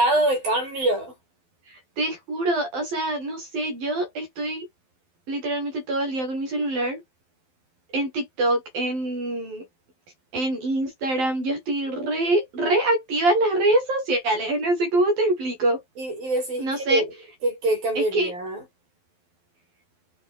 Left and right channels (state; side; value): late; left; 12 ms